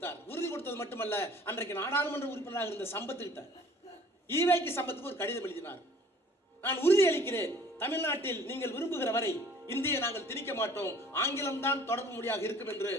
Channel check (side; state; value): both; normal; correlation 0.52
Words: உறுதி கொடுத்தது மட்டுமல்ல, அன்றைக்கு நாடாளுமன்ற உறுப்பினராக இருந்த சம்பத்துக்கிட்ட ஈவேக்கு சம்பத்துக்கு ஒரு கடிதம் எழுதினார். நான் உறுதி அளிக்கிறேன், தமிழ்நாட்டில் நீங்கள் விரும்புகிற வரை இந்தியை நாங்கள் திணிக்க மாட்டோம், ஆங்கிலம் தான் தொடர்பு மொழியாக இருக்கும் என்று